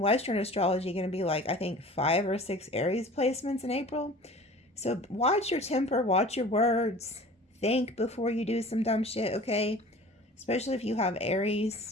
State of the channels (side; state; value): both; normal; correlation 0.43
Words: astrology going to be like, I think 5 or 6 Aries placements in April. So watch your temper, watch your words, think before you do some dumb shit, okay? Especially if you have